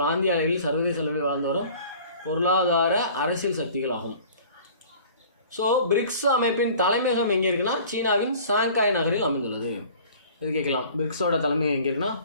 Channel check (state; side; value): inverted; both; correlation -0.48